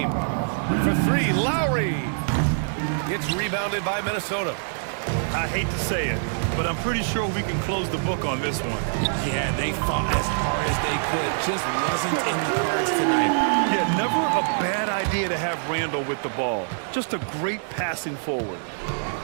For three, Lowry. Gets rebounded by Minnesota. I hate to say it, but I'm pretty sure we can close the book on this one. Yeah, they fought as hard as they could. Just wasn't in the cards tonight. Yeah, never a bad idea to have Randall with the ball. Just a great passing forward.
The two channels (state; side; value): silent; left; digital silence